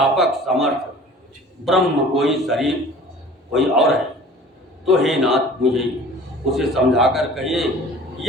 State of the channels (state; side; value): normal; both; correlation 0.46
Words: समर्थ ब्रह्म कोई शरीर कोई और है, तो हे नाथ मुझे उसे समझाकर कहिए।